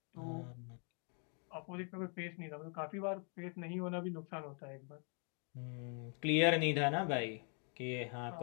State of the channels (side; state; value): right; quieter; 39.1 dB